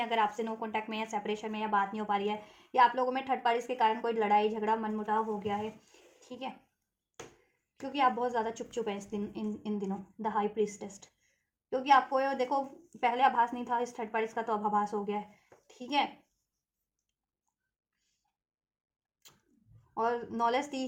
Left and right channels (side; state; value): both; identical; correlation 1.00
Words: अगर आपसे नो कॉन्टैक्ट में या सेपरेशन में या बात नहीं हो पा रही है, या आप लोगों में थर्ड पार्टीज के कारण कोई लड़ाई झगड़ा मनमुटाव हो गया है, ठीक है। क्योंकि आप बहुत ज़्यादा चुप चुप हैं इस दिन, इन दिनों, द हाई प्रीस्टेस्ट। क्योंकि आपको देखो पहले आभास नहीं था इस थर्ड पार्टीज का, तो अब आभास हो गया है, ठीक है। और नॉलेज दी